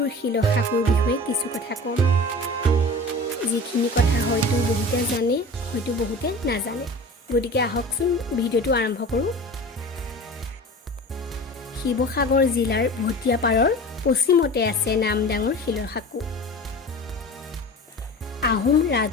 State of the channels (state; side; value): normal; both; correlation 0.36